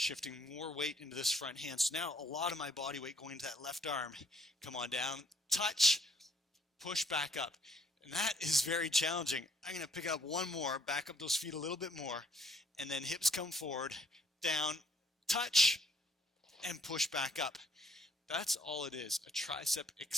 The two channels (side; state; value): both; normal; correlation 0.65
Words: more weight into this front hand. So now a lot of my body weight going into that left arm. Come on down, touch, push back up. And that is very challenging. I'm going to pick up one more, back up those feet a little bit more, and then hips come forward, down, touch, and push back up. That's all it is, a tricep